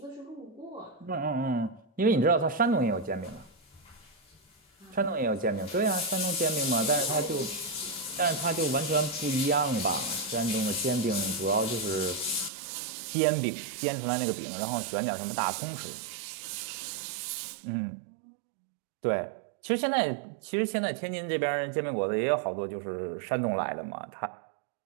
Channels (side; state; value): left; drops out; at 12.5 s